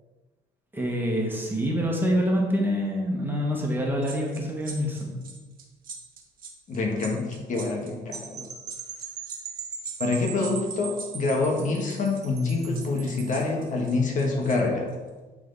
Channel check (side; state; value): both; normal; correlation 0.64